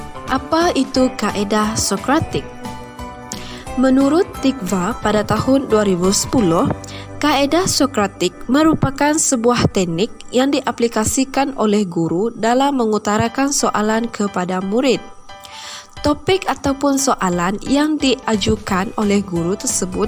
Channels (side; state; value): both; identical; correlation 1.00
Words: Apa itu kaedah Sokratik? Menurut Tikva pada tahun 2010, kaedah Sokratik merupakan sebuah teknik yang diaplikasikan oleh guru dalam mengutarakan soalan kepada murid. Topik ataupun soalan yang diajukan oleh guru tersebut